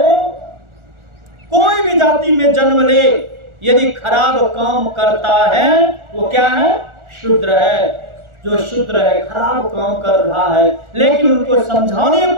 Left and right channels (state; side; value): late; left; 1.4 ms